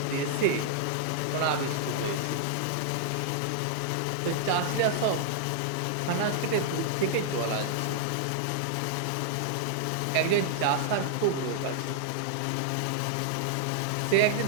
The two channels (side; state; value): both; different; correlation -0.01